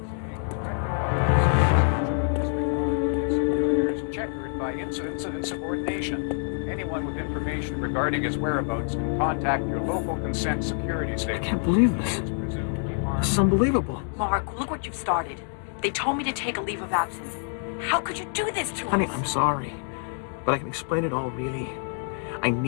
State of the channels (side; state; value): right; silent; 60 dB below the other